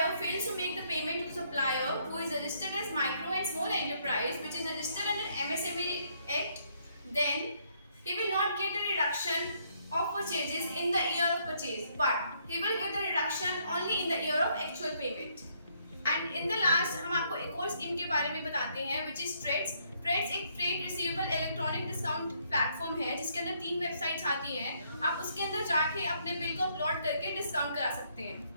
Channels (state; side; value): inverted; both; correlation -0.70